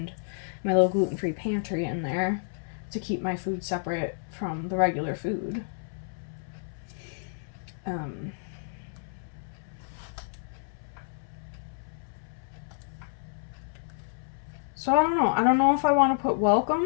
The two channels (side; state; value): right; silent; 58 dB below the other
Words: my little gluten-free pantry in there to keep my food separate from the regular food. So I don't know. I don't know if I want to put